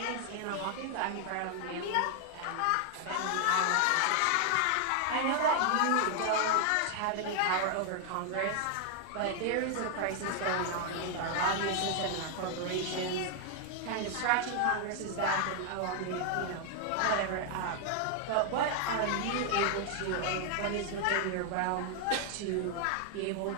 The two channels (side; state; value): both; different; correlation 0.00